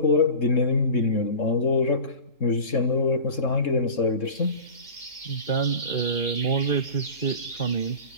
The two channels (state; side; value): late; right; 3.7 ms